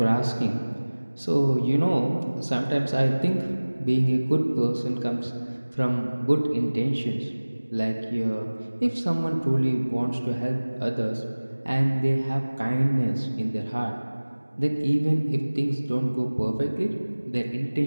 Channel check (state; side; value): inverted; both; correlation -1.00